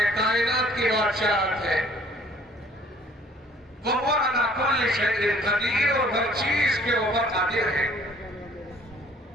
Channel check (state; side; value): normal; both; correlation 0.57